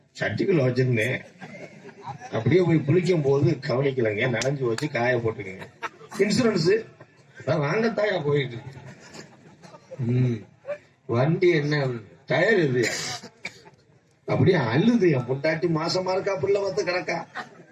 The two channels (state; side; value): identical; both; correlation 1.00